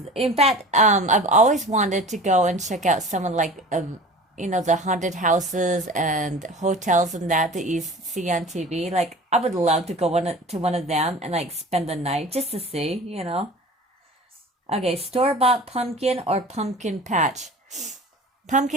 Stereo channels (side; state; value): both; normal; correlation 0.40